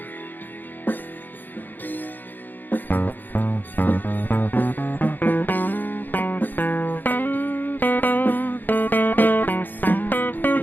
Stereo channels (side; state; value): right; late; 0.089 ms